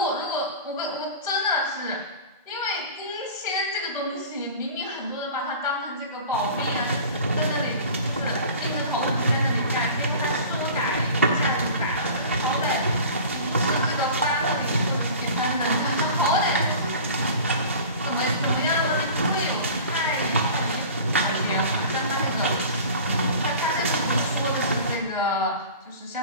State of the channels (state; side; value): inverted; both; correlation -0.40